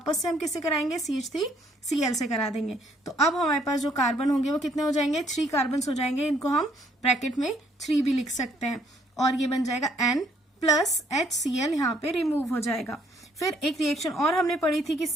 से हम किससे कराएंगे, CH3Cl से करा देंगे। तो अब हमारे पास जो कार्बन होंगे वो कितने हो जाएंगे, 3 कार्बन हो जाएंगे। इनको हम ब्रैकेट में 3 भी लिख सकते हैं और ये बन जाएगा N प्लस HCl, यहाँ पे रिमूव हो जाएगा। फिर एक रिएक्शन और हमने पढ़ी थी कि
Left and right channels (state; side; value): normal; both; correlation 0.66